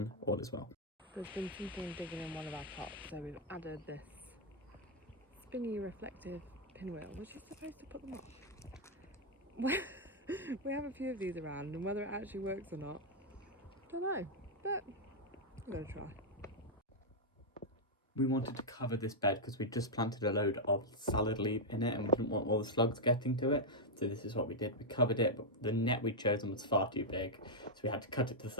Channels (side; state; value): both; normal; correlation -0.03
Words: all is well. There's been something digging in one of our pots, so we've added this spinny reflective pinwheel, which is supposed to put them off. We have a few of these around, and whether it actually works or not, don't know, but I'm gonna try. We wanted to cover this bed because we just planted a load of salad leaf in it and we didn't want all the slugs getting to it. So this is what we did. We covered it, but the net we'd chosen was far too big. So we had to cut it to